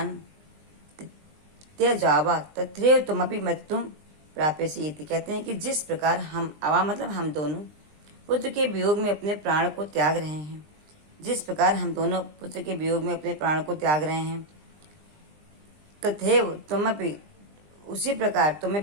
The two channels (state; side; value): late; left; 20 ms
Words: त्यजावा तथैव तुमपि मृत्युम प्राप्यसि। कहते हैं कि जिस प्रकार हम, आवाम मतलब हम दोनों, पुत्र के वियोग में अपने प्राण को त्याग रहे हैं, जिस प्रकार हम दोनों पुत्र के वियोग में अपने प्राण को त्याग रहे हैं, तथैव तुमपि, उसी प्रकार